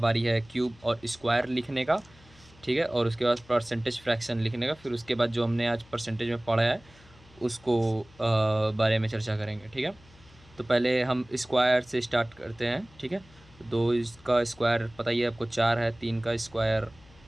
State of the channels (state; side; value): noise; left; hum, 26 dB below the sound